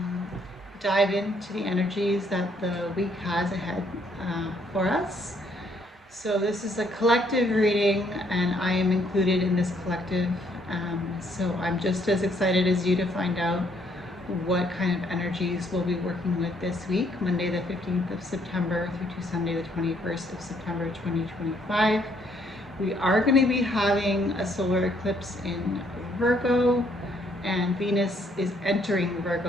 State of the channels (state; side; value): normal; both; correlation 0.68